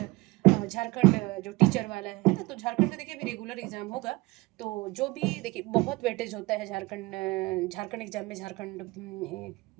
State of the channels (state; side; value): quieter; left; 22.5 dB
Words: झारखंड जो टीचर वाला है ना। तो झारखंड में देखिए अभी रेगुलर एग्जाम होगा। तो जो भी देखिए बहुत वेटेज होता है झारखंड एग्जाम में, झारखंड